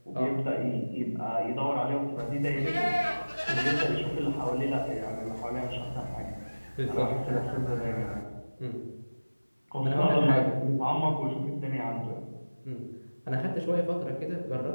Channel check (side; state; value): both; inverted; correlation -1.00